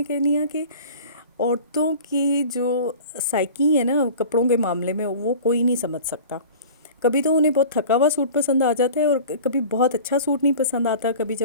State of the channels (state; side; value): inverted; both; correlation -0.40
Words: कह रही हूँ कि औरतों की जो साइकी है ना कपड़ों के मामले में, वो कोई नहीं समझ सकता। कभी तो उन्हें बहुत थका हुआ सूट पसंद आ जाता है और कभी बहुत अच्छा सूट नहीं पसंद आता। कभी